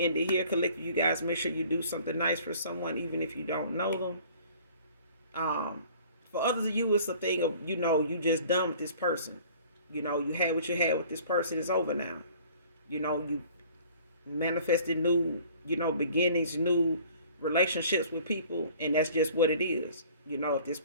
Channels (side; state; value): both; inverted; correlation -0.51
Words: end it here. Collective, you guys make sure you do something nice for someone, even if you don't know them. For others of you, it's a thing of, you just done with this person. You had what you had with this person. It's over now. You manifested new, beginnings, new relationships with people, and that's just what it is. If this